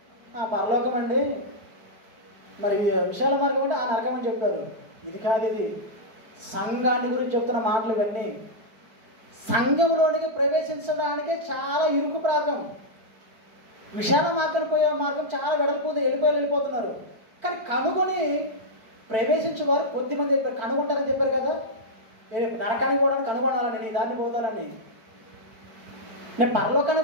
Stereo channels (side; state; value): left; late; 4.5 ms